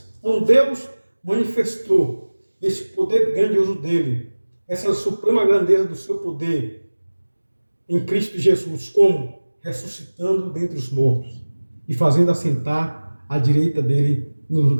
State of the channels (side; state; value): both; inverted; correlation -1.00